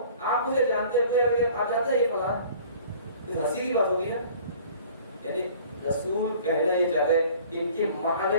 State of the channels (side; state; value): both; inverted; correlation -0.50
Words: آپ مجھے جانتے ہیں, آپ جانتے ہیں یہ فلاں. ہنسی کی بات ہوگی نا. یعنی رسول کہنا یہ چاہتے ہیں کہ ان کی